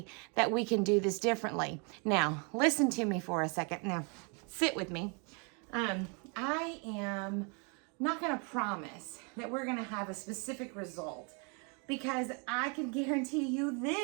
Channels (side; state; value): left; quieter; 34.8 dB